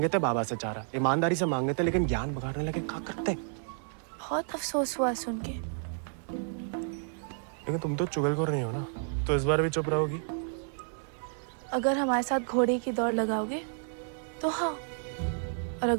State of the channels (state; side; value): silent; left; 57 dB below the other